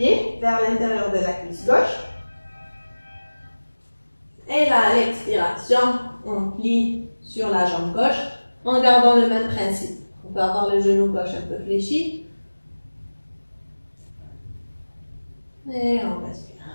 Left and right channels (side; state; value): both; inverted; correlation -1.00